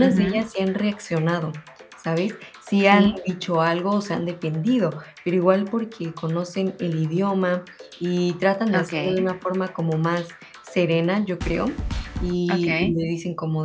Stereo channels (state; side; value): identical; both; correlation 1.00